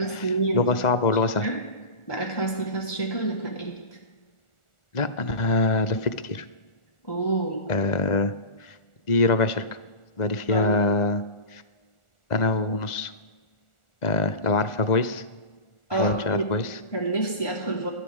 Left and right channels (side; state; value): right; late; 1.4 ms